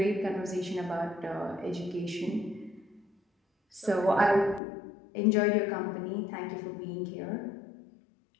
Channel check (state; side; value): drops out; right; at 4.6 s